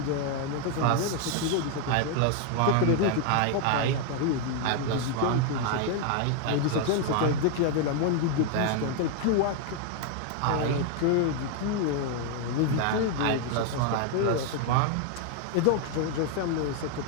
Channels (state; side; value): different; both; correlation 0.00